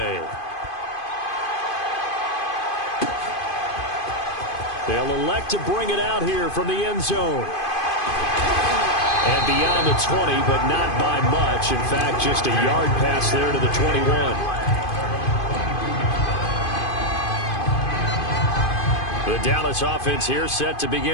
They'll elect to bring it out here from the end zone. And beyond the 20, but not by much. In fact, just a yard pass there to the 21. The Dallas offense here set to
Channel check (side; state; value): right; late; 2.5 ms